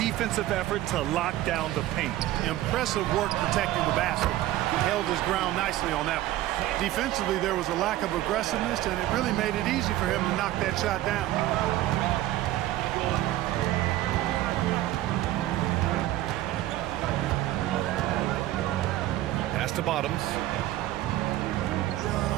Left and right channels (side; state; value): left; quieter; 15.0 dB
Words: effort to lock down the paint. Impressive work protecting the basket. He held his ground nicely on that one. Defensively, there was a lack of aggressiveness, and it really made it easy for him to knock that shot down. Pass to Bottoms.